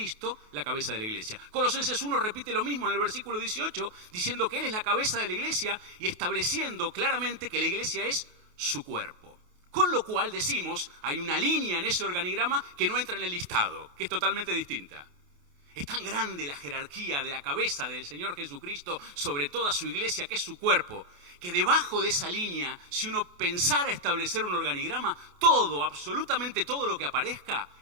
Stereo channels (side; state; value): left; late; 28 ms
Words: la cabeza de la iglesia. Colosenses 1 repite lo mismo en el versículo 18, diciendo que Él es la cabeza de la iglesia y estableciendo claramente que la iglesia es su cuerpo. Con lo cual decimos, hay una línea en ese organigrama que no entra en el listado, que es totalmente distinta. Es tan grande la jerarquía de la cabeza del Señor Jesucristo sobre toda su iglesia, que es su cuerpo, que debajo de esa línea, si uno pensara establecer un organigrama, todo, absolutamente todo lo que aparezca,